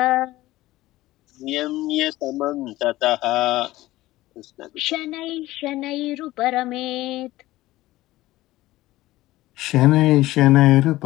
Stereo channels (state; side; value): quieter; right; 17.1 dB